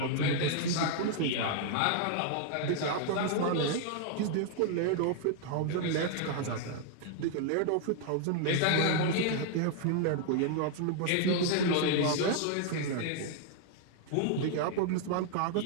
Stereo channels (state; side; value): different; both; correlation 0.00